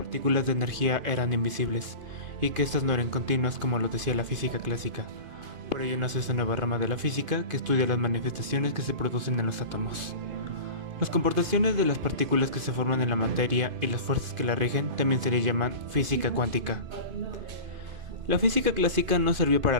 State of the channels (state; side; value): late; left; 2.5 ms